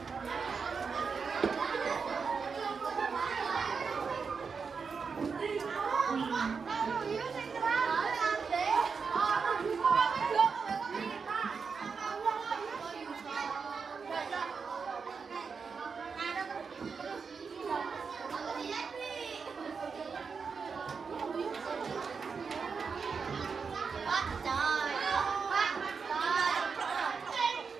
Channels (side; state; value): left; quieter; 5.4 dB